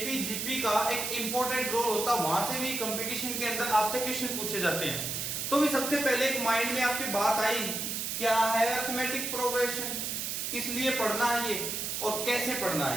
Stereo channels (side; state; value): right; noise; hiss, 2 dB below the sound